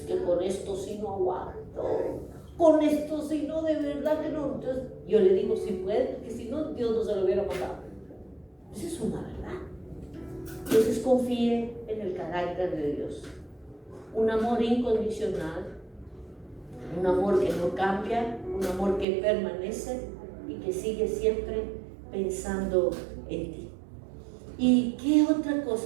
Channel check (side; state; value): left; drops out; at 19.1 s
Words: que con esto sí no aguanto. Con esto sí no, de verdad que no. Entonces yo le digo, si puede, porque si no, Dios no se lo hubiera mandado. Esa es una verdad. Entonces confíe en el carácter de Dios. Un amor incondicional. Un amor que no cambia, un amor que permanece y que sigue siempre pensando en ti. ¿Y qué otra